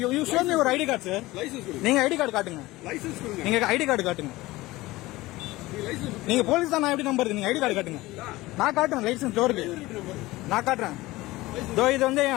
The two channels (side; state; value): right; quieter; 19.1 dB